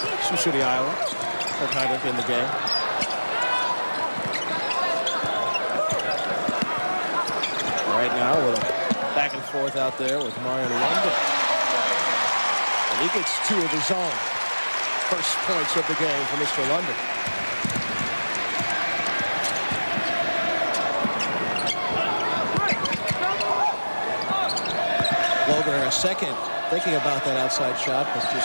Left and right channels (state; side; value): inverted; both; correlation -1.00